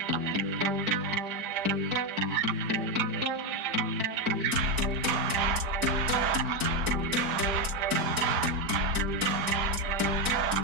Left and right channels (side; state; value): left; late; 4.5 ms